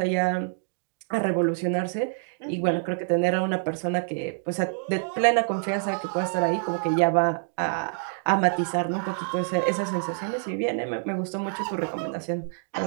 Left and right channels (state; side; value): silent; left; digital silence